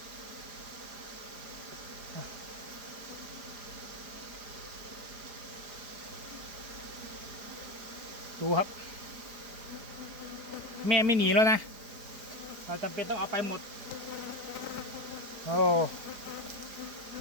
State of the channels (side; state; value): left; late; 4.9 ms